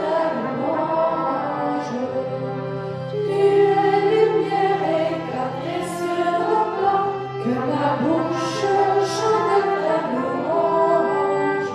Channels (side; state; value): both; identical; correlation 1.00